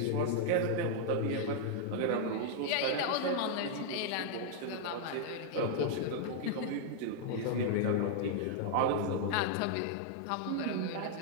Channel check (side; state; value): both; different; correlation -0.01